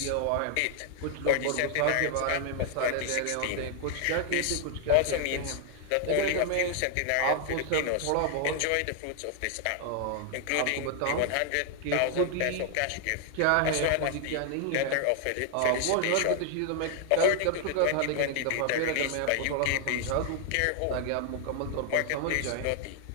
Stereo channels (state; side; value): different; both; correlation 0.00